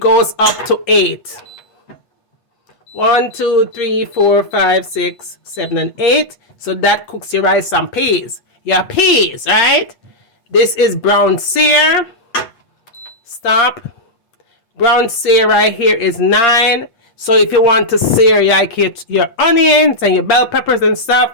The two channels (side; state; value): right; late; 8.3 ms